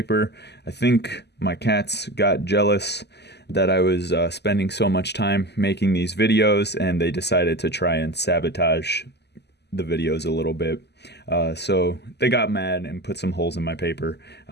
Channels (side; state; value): right; late; 0.49 ms